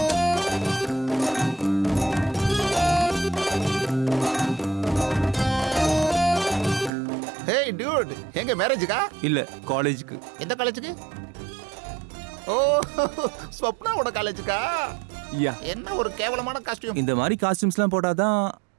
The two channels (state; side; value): drops out; left; at 6.9 s